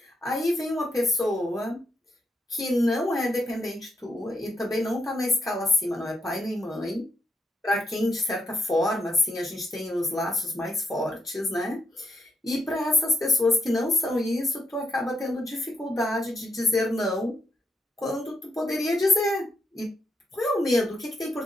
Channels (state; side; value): normal; both; correlation 0.79